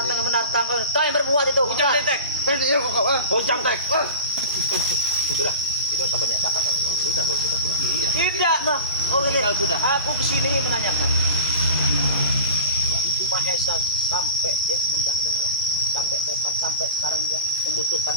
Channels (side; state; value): both; inverted; correlation -0.34